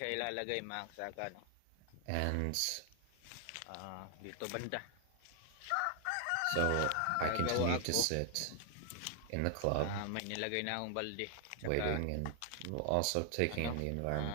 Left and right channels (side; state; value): both; different; correlation 0.00